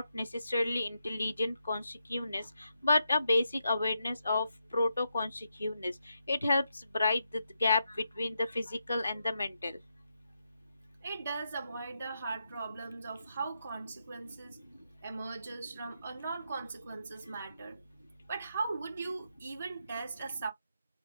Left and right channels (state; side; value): inverted; both; correlation -0.84